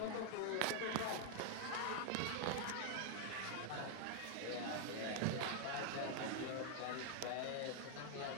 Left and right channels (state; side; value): different; both; correlation 0.00